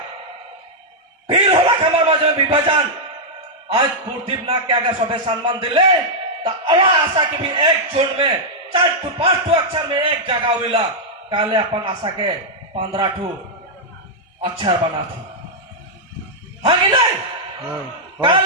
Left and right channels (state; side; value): normal; both; correlation -0.06